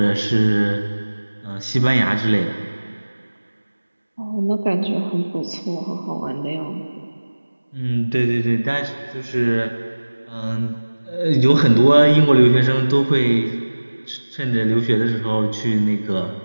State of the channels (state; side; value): inverted; both; correlation -1.00